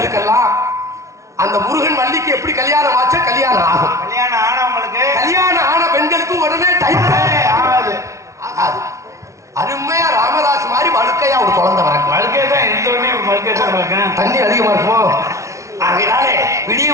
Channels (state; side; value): late; left; 0.14 ms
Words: அந்த முருகன் வள்ளிக்கு எப்படி கல்யாணம் ஆச்சா கல்யாணம் ஆகும். கல்யாணம் ஆன பெண்களுக்கு இருக்கும். தண்ணி அதிகமா இருக்குமோ? ஆகையினாலே விடிய